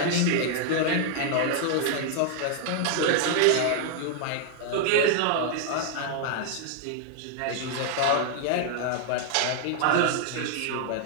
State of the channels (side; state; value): both; different; correlation 0.00